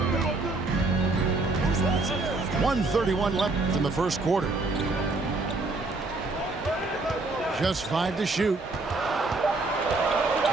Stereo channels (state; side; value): quieter; left; 3.3 dB